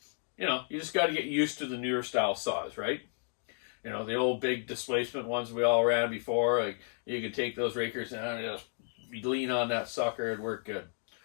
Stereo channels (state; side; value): silent; right; 56 dB below the other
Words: you just got to get used to the newer style saws, right? The old big displacement ones we all ran before, you can take those rakers down and just lean on that sucker and work good.